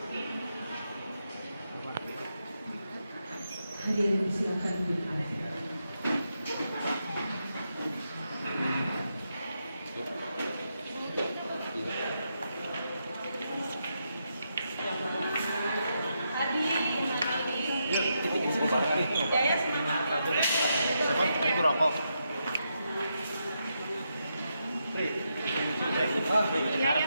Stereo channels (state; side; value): inverted; both; correlation -0.83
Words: Hadirin silakan duduk. Jaya semangat. Siapa? Ibu rokok.